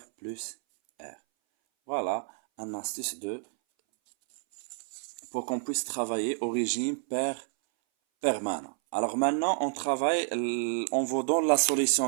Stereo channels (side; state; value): left; silent; 58 dB below the other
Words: plus R. Voilà un astuce pour qu'on puisse travailler au régime permanent. Alors maintenant, on vous donne la